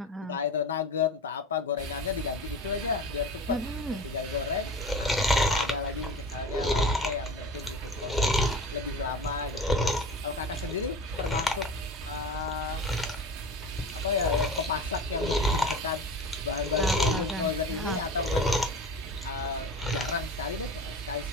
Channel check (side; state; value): both; normal; correlation 0.34